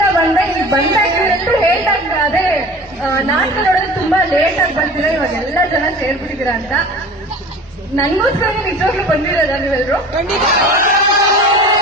ಬಂದೆ. ಇಲ್ಲಿ ಬಂದಾಗ ಇವರೆಲ್ಲರೂ ಹೇಳ್ದಾಗ ಅದೇ ನಾಟಕ ನೋಡೋದು ತುಂಬಾ ಲೇಟ್ ಆಗಿ ಬರ್ತೀರಾ, ಇವಾಗ ಎಲ್ಲ ಜನ ಸೇರ್ಬಿಟ್ಟಿದ್ದೀರಾ ಅಂತ. ನನ್ಗೋಸ್ಕರ ನಿಜವಾಗ್ಲೂ ಬಂದಿರೋದ ನೀವೆಲ್ಲರೂ?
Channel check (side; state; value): right; noise; hum, 27 dB below the sound